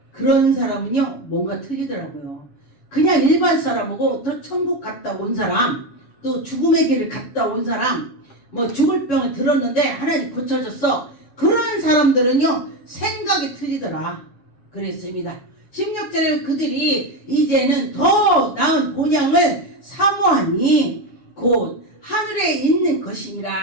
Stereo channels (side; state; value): right; late; 7.1 ms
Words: 그런 사람은요 뭔가 틀리더라고요. 그냥 일반 사람하고 또 천국 갔다 온 사람, 또 죽음의 길을 갔다 온 사람, 뭐 죽을 병을 들었는데 하나님 고쳐줬어. 그런 사람들은요 생각이 틀리더라. 그랬습니다. 16절에 그들이 이제는 더 나은 본향을 사모하니 곧 하늘에 있는